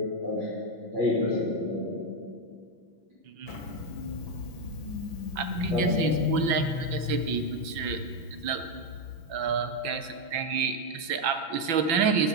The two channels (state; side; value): late; left; 5.9 ms